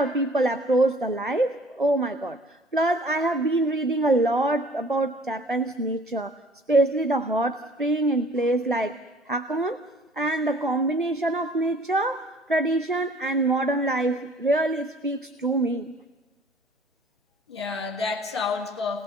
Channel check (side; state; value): both; normal; correlation 0.53